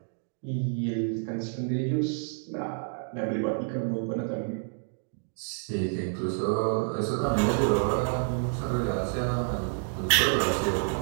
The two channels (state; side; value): silent; left; digital silence